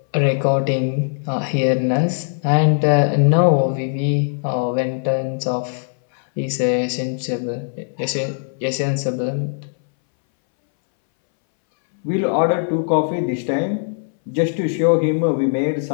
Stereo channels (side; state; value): right; silent; 63 dB below the other